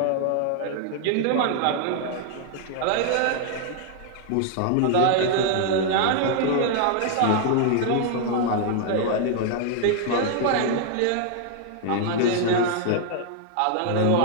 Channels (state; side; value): different; both; correlation 0.00